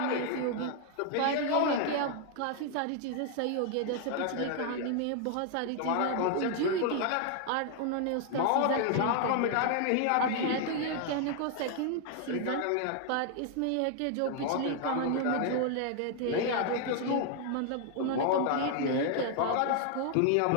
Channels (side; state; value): both; different; correlation 0.00